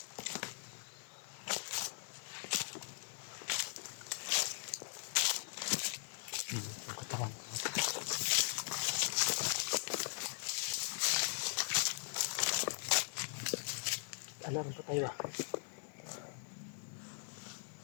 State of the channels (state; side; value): silent; right; 51 dB below the other